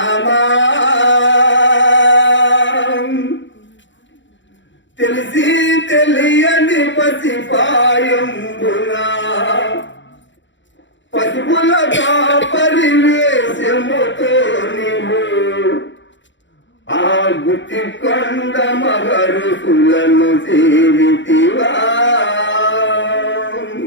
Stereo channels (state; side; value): late; right; 0.54 ms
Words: తెలిసి తెలియని పసిపాయంబున పసుపులగా పరివేశముతో నీవు ఆ గుత్తి కొండ మహరుసులను సేవితివా.